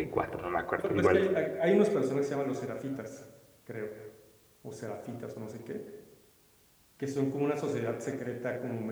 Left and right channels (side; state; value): both; identical; correlation 1.00